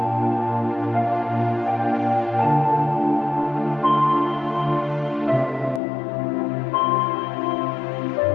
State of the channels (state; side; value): drops out; right; at 5.8 s